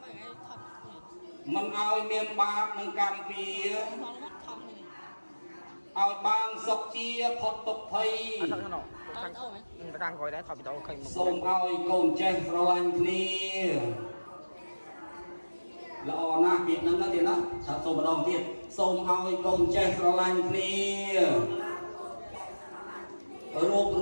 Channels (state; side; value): inverted; both; correlation -1.00